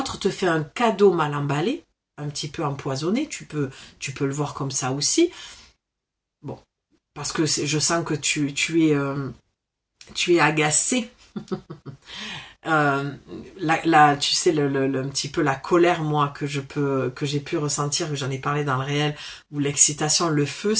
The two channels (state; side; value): identical; both; correlation 1.00